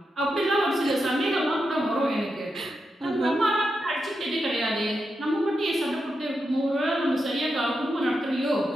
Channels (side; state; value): both; normal; correlation 0.86